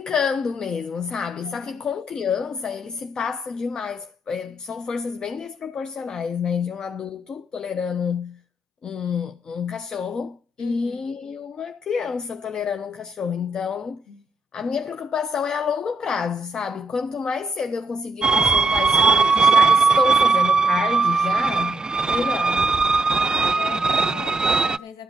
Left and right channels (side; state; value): both; normal; correlation 0.77